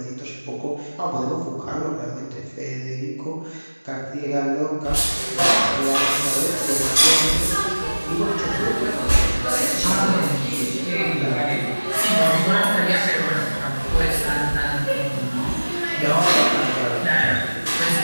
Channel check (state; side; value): inverted; both; correlation -1.00